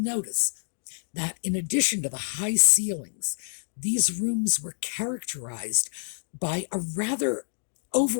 that in addition to the high ceilings, these rooms were characterized by a rather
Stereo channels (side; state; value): right; silent; digital silence